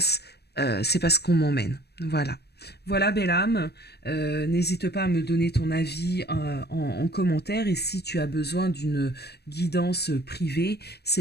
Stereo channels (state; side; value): late; right; 0.47 ms